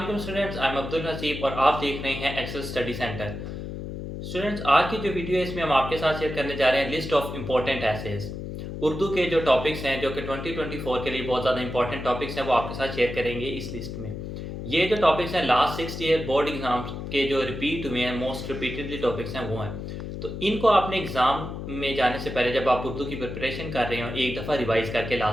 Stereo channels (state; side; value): noise; left; hum, 7 dB below the sound